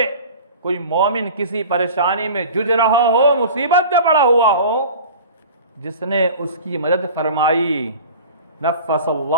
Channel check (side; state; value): both; inverted; correlation -0.39